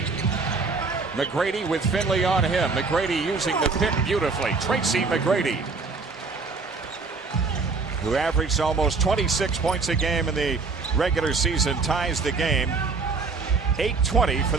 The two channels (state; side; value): quieter; left; 4.3 dB